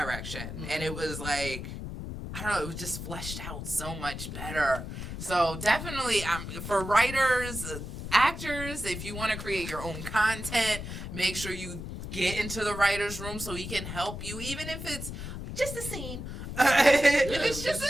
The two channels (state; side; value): noise; left; rumble, 8 dB below the sound